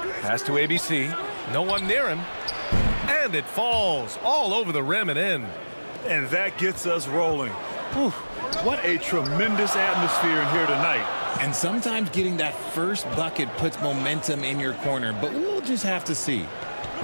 Pass to ABC. No one near him. And it falls all over the rim and in. And that gets us rolling. Whew, what a tremendous atmosphere in here tonight. And sometimes getting that first bucket puts momentum in your corner, but we'll just have to see.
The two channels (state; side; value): inverted; both; correlation -1.00